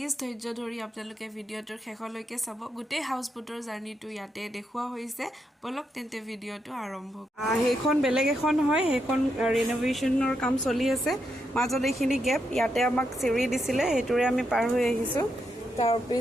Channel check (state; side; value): normal; both; correlation 0.82